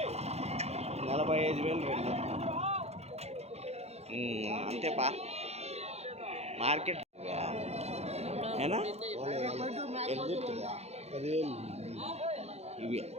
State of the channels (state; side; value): late; left; 0.31 ms